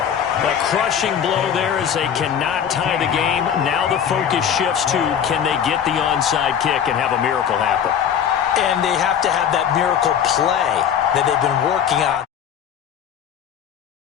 A crushing blow there as they cannot tie the game. Now the focus shifts to, can they get the onside kick and have a miracle happen? And they have to have that miracle play that they've been working on.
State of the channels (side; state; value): right; quieter; 8.5 dB